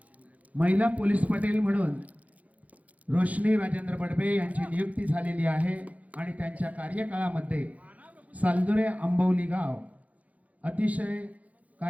महिला पोलीस पटेल म्हणून रोशनी राजेंद्र बडबे यांची नियुक्ती झालेली आहे आणि त्यांच्या कार्यकाळामध्ये सालदुरे आंबवली गाव अतिशय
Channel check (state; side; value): late; left; 0.071 ms